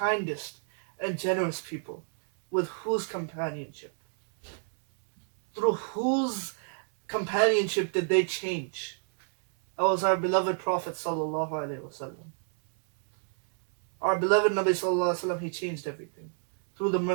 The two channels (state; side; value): silent; left; digital silence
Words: and generous people, with whose companionship, through whose companionship did they change? That was our beloved Prophet sallallahu alaihi wasallam. Our beloved Nabi sallallahu alaihi wasallam, he changed everything through the